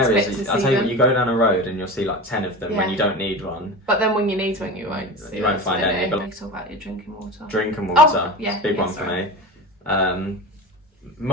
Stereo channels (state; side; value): normal; both; correlation 0.29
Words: expect to I'll see tell you them. what, you go down a road and you'll see like 10 of them when Yeah. you don't need one. But then when you need one, you won't see You won't them, find so any, you but- need to talk about your drinking water. Drinking water, yeah, it's a big yeah, one sorry. for me.